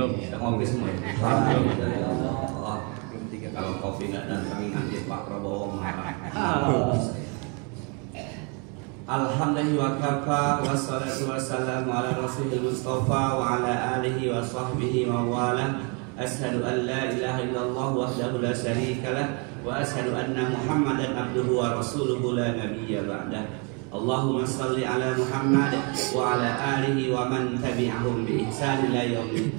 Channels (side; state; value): left; quieter; 34.4 dB